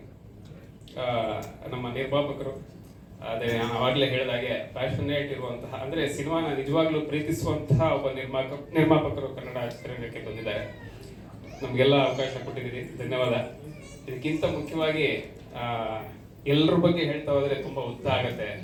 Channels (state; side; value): identical; both; correlation 1.00